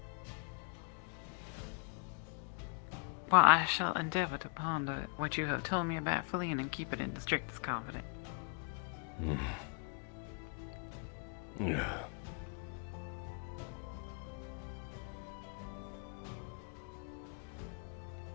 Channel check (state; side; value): quieter; right; 37.0 dB